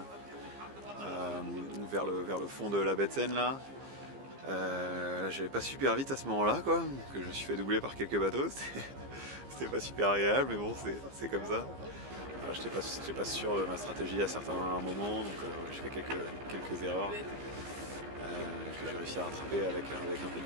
vers le fond de la baie de Seine là. J'allais pas super vite à ce moment-là, quoi, donc je me suis fait doubler par quelques bateaux. C'était pas super agréable, mais bon, c'est comme ça. J'étais pas sûr de ma stratégie à certains moments, donc j'ai fait quelques erreurs que j'ai réussi à rattraper avec un peu de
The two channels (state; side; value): late; left; 15 ms